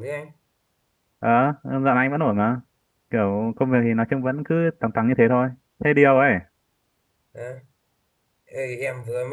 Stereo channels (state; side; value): identical; both; correlation 1.00